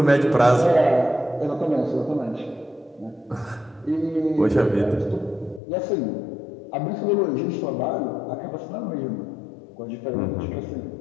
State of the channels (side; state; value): right; drops out; at 5.6 s